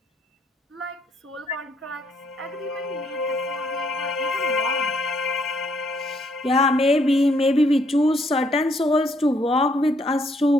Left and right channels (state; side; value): normal; both; correlation 0.70